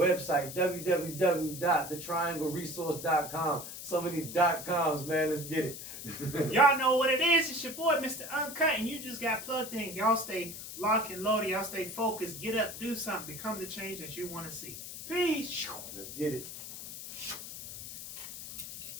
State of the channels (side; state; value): left; noise; hiss, 10 dB below the sound